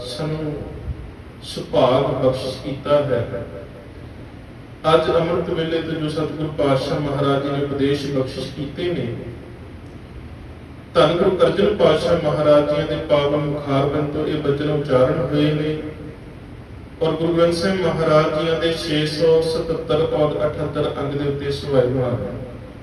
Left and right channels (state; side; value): identical; both; correlation 1.00